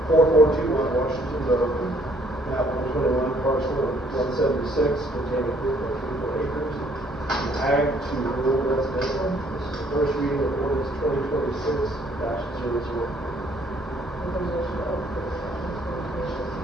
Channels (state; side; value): normal; both; correlation 0.64